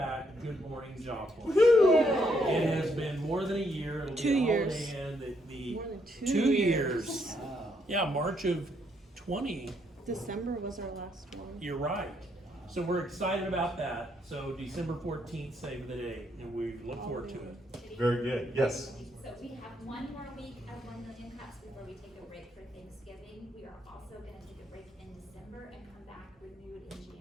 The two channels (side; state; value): both; normal; correlation 0.74